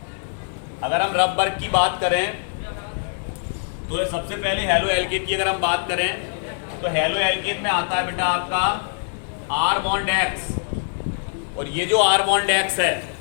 अगर हम रफ वर्क की बात करें तो सबसे पहले हेलो एल्किन की अगर हम बात करें तो हेलो एल्किन में आता है बेटा आपका R बॉन्ड X, और ये जो R बॉन्ड X है,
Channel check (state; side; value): silent; right; digital silence